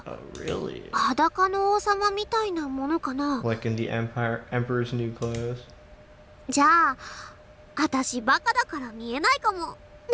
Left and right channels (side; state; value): both; identical; correlation 1.00